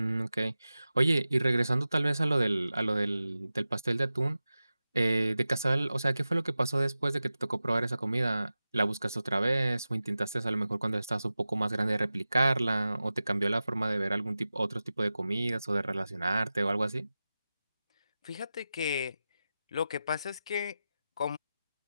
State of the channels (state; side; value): inverted; both; correlation -0.94